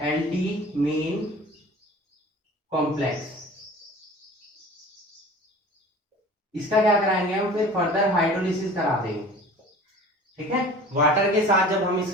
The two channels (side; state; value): both; normal; correlation 0.42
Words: एल्डीमीन कॉम्प्लेक्स। इसका क्या कराएंगे हम, फिर फर्दर हाइड्रोलिसिस करा देंगे। ठीक है, वाटर के साथ जब हम